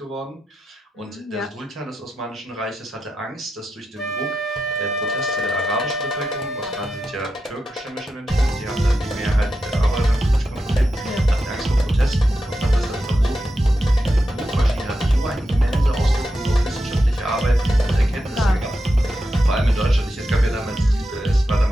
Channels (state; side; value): normal; both; correlation 0.88